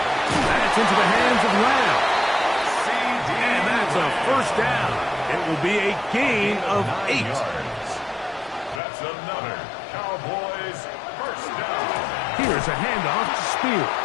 That's into the hands of Lamb. And that's a first down. It will be a gain of 8. That's another Cowboys first down. Here's a handoff to Spears.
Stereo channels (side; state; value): right; drops out; at 8.8 s